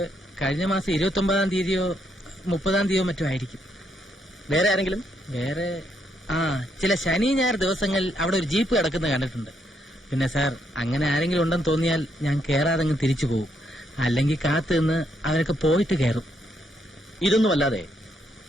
കഴിഞ്ഞ മാസം 29-ാം തീയതിയോ 30-ാം തീയതിയോ മറ്റോ ആയിരിക്കും. വേറെ ആരെങ്കിലും? വേറെ ചില ശനി ഞായർ ദിവസങ്ങളിൽ അവിടെ ഒരു ജീപ്പ് കിടക്കുന്നത് കണ്ടിട്ടുണ്ട്. പിന്നെ സാർ, അങ്ങനെ ആരെങ്കിലും ഉണ്ടെന്ന് തോന്നിയാൽ ഞാൻ കയറാതെങ്ങ് തിരിച്ചു പോകും. അല്ലെങ്കിൽ കാത്തു നിന്ന് അവരൊക്കെ പോയിട്ട് കയറും. ഇതൊന്നും അല്ലാതെ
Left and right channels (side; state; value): both; normal; correlation 0.76